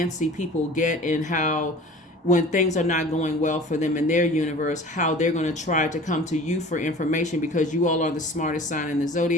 people get, and how when things are not going well for them in their universe, how they're going to try to come to you for information, because you all are the smartest sign in the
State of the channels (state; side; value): normal; both; correlation 0.43